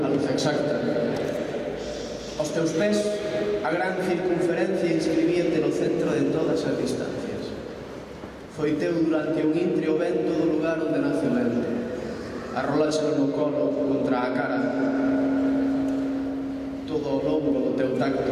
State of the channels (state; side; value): identical; both; correlation 1.00